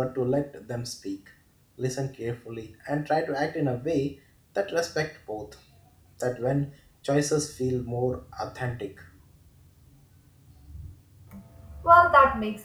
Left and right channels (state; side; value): identical; both; correlation 1.00